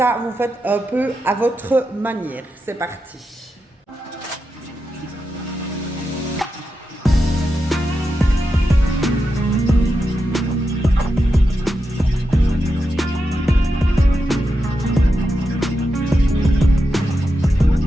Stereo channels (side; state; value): both; normal; correlation 0.88